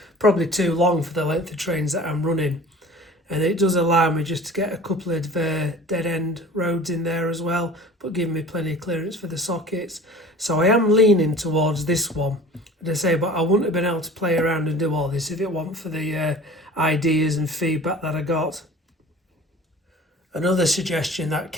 probably too long for the length of trains that I'm running. And it does allow me just to get a couple of dead end roads in there as well, but giving me plenty of clearance for the sockets. So I am leaning towards this one, as I say, but I wouldn't have been able to play around and do all this if it weren't for the ideas and feedback that I got. Another suggestion that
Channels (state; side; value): normal; both; correlation 0.43